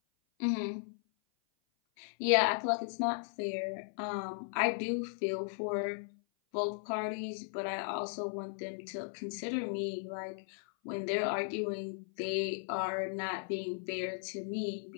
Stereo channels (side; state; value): right; silent; 54 dB below the other